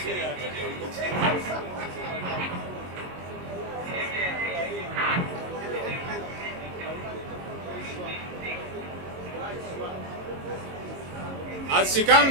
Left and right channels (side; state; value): left; late; 22 ms